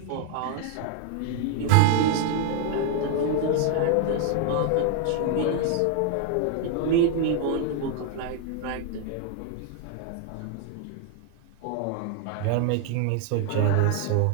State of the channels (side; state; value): both; different; correlation 0.00